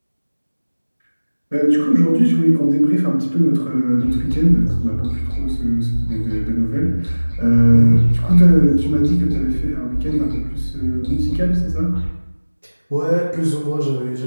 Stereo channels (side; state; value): both; inverted; correlation -1.00